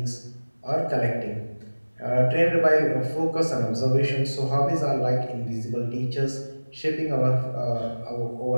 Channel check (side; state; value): both; inverted; correlation -1.00